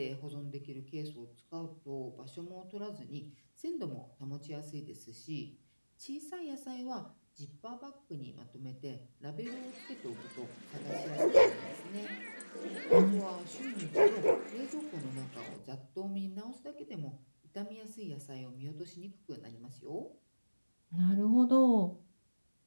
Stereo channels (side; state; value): both; inverted; correlation -1.00